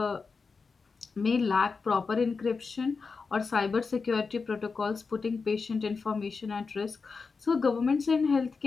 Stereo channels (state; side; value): quieter; right; 4.8 dB